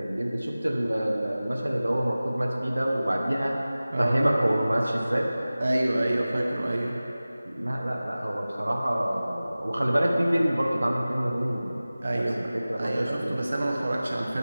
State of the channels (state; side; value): inverted; both; correlation -0.97